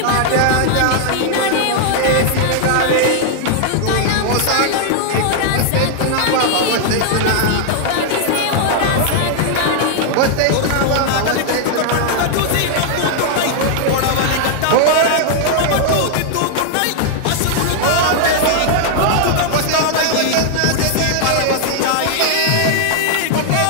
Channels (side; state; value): both; different; correlation 0.00